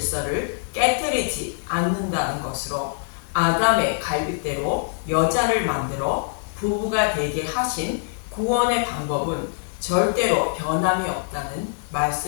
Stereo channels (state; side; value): silent; right; digital silence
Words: 깨뜨리지 않는다는 것으로, 아담의 갈빗대로 여자를 만들어 부부가 되게 하신 구원의 방법은 절대로 변함이 없다는